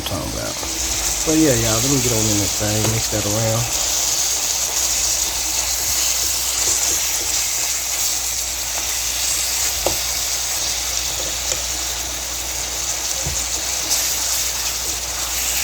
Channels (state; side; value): identical; both; correlation 1.00